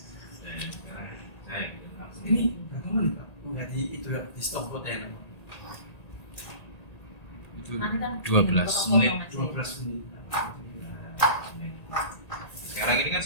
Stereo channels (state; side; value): late; right; 1.8 ms